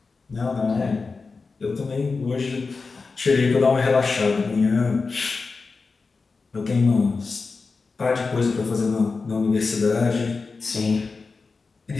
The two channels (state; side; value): quieter; right; 4.3 dB